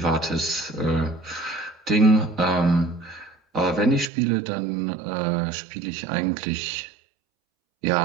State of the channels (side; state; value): left; drops out; at 4.1 s